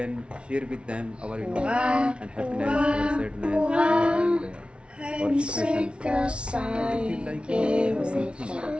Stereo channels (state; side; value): late; left; 0.058 ms